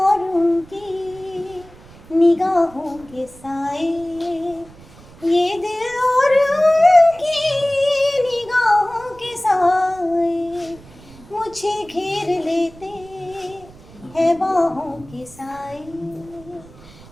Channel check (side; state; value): right; noise; rumble, 22 dB below the sound